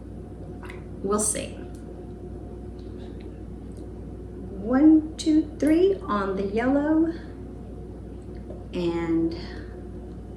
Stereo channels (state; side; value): identical; both; correlation 1.00